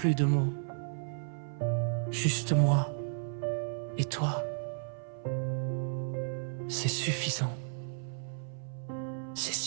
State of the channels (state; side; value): silent; left; 56 dB below the other